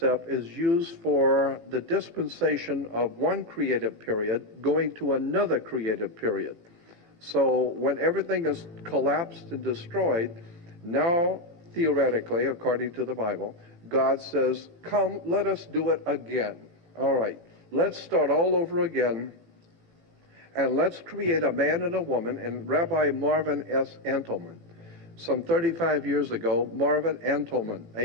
is used for the dispensation of one creative period going to another creative period. So when everything is collapsed and destroyed, now theoretically, according to the Bible, God says, come, let us do it again. All right, let's start all over again, and let's create a man and a woman. And Rabbi Marvin S. Antelman, some 35 years ago, Marvin Antelman,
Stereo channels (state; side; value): late; left; 18 ms